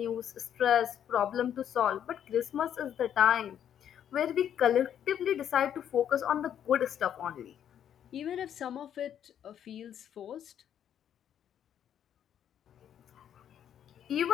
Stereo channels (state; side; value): quieter; right; 9.6 dB